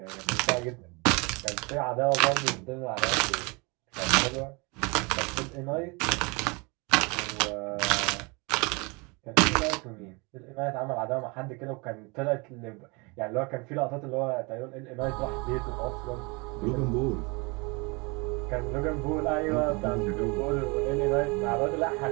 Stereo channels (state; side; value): quieter; left; 28.7 dB